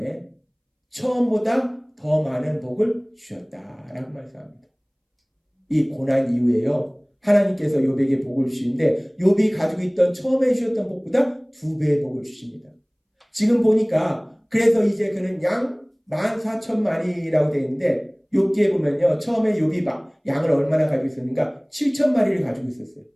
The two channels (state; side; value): identical; both; correlation 1.00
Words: 처음보다 더 많은 복을 주셨다라고 말씀합니다. 이 고난 이후에요, 하나님께서 욥에게 복을 주시는데 욥이 가지고 있던 처음에 주셨던 복보다 2배의 복을 주십니다. 지금 보니까 그래서 이제 그는 양 14,000마리라고 되어 있는데, 욥기에 보면요 처음에 욥이 양을 얼마나 가지고 있었는가? 7,000마리를 가지고 있었어요.